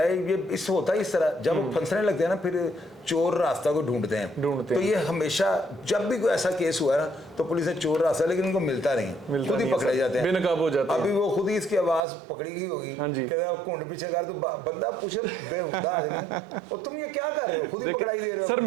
ये इस होता है इस तरह, जब वो फंसने लगते हैं ना फिर चोर रास्ता को ढूंढते हैं। तो ये हमेशा जब भी कोई ऐसा केस हुआ है ना तो पुलिस ने चोर रास्ता, लेकिन उनको मिलता नहीं, खुद ही पकड़े जाते हैं, बेनकाब हो जाते हैं। अभी वो खुद ही इसकी आवाज पकड़ी गई होगी, घुंड पीछे कर, तो बंदा पूछे बेहुदा आदमी और तुम ये क्या कर रहे हो, खुद ही पकड़ाई दे रहे हो। सर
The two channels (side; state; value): left; drops out; at 12.1 s